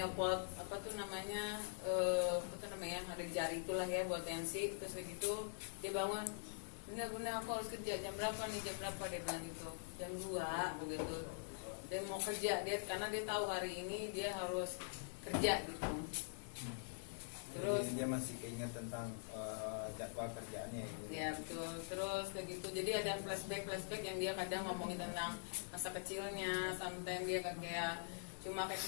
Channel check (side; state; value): right; silent; digital silence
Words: ada di jari itulah ya buat tensi, terus begitu dia bangun, bener-bener aku harus kerja jam berapa dia bilang gitu, jam 2 begitu dia mau kerja karena dia tahu hari ini dia harus kerja gitu. Terus jadi dia masih keinget tentang jadwal kerjaannya gitu. Ya betul. Terus begitu jadi ada flashback yang dia kadang ngomongin tentang masa kecilnya. Sometimes dia kayak cuma kayak